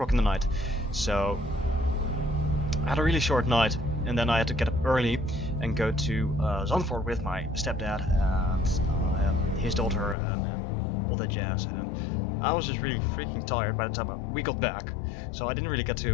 in the night, so I had a really short night, and then I had to get up early and go to Zandvoort with my stepdad and his daughter and all that jazz, and I was just really freaking tired by the time we got back, so I didn't really get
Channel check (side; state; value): right; drops out; at 10.2 s